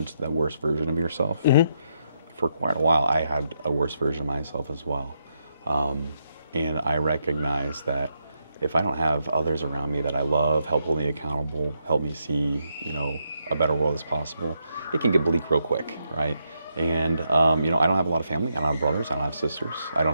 the worst version of yourself. For quite a while, I had a worse version of myself as well. And I recognize that if I don't have others around me that I love, help hold me accountable, help me see, you know, a better world as possible, it can get bleak real quick, right? And, you know, I don't have a lot of family. I don't have brothers. I don't have sisters. I don't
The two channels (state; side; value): inverted; both; correlation -0.80